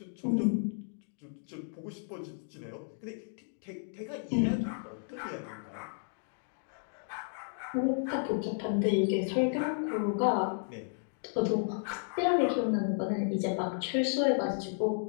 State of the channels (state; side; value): silent; right; digital silence